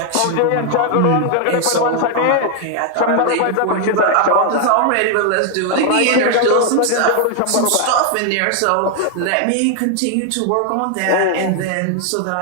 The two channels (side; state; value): both; different; correlation 0.00